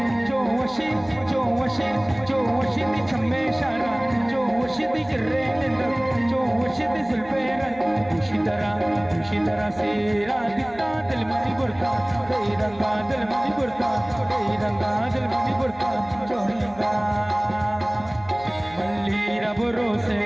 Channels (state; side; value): noise; right; hum, 23 dB below the sound